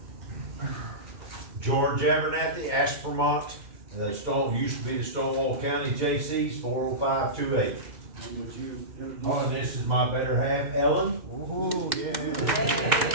George Abernathy, Ashburmont, used to be the Stonewall County JCs, 40528. And would you introduce? Oh, and this is my better half, Ellen. Oh, yeah.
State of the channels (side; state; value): left; late; 2.1 ms